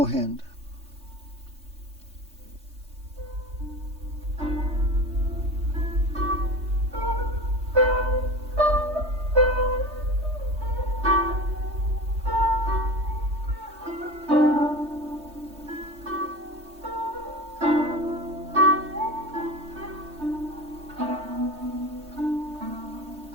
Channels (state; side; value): late; left; 3.2 ms